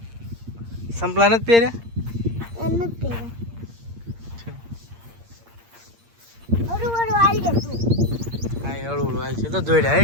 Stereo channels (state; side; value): late; left; 8.7 ms